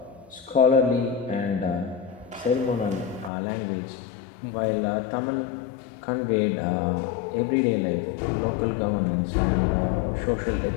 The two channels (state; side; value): drops out; right; at 3.3 s